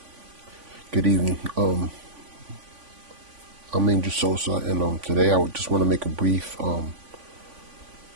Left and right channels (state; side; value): late; left; 3.5 ms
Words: good evening. I'm Angel Sosa, and today I would just want to make a brief